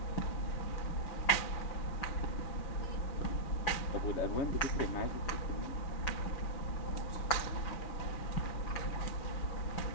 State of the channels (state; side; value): late; right; 6.0 ms